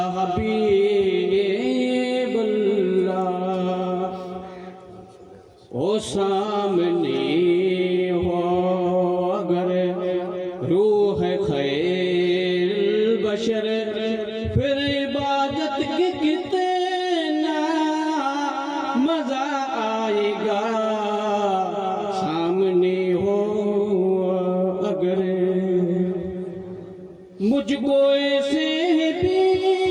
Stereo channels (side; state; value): both; identical; correlation 1.00